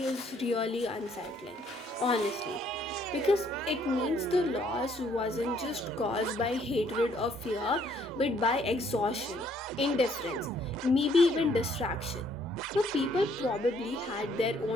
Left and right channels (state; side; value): normal; both; correlation 0.66